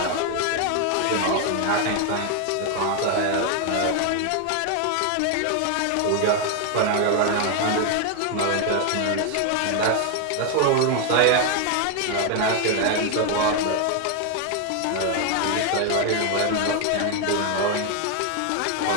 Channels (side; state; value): both; different; correlation 0.01